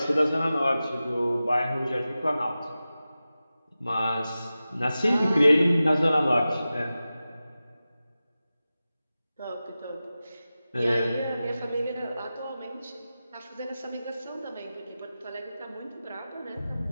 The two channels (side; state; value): both; inverted; correlation -0.94